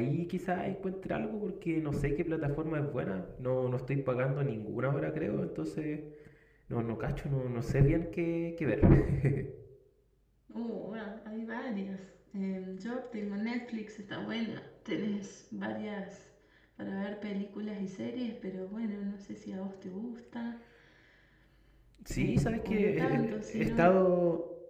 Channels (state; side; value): identical; both; correlation 1.00